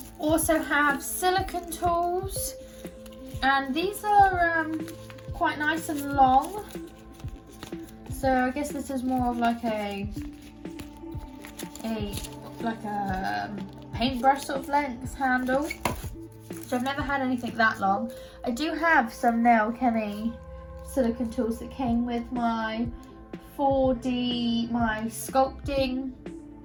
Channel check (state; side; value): identical; both; correlation 1.00